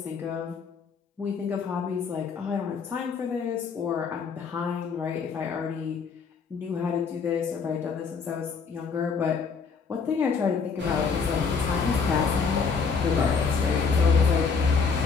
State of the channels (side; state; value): right; quieter; 5.4 dB